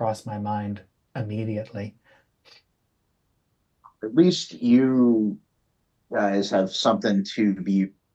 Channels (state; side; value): identical; both; correlation 1.00